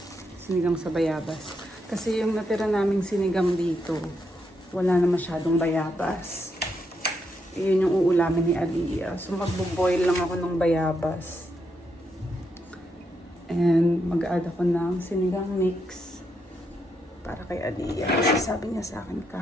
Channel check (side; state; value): both; normal; correlation 0.80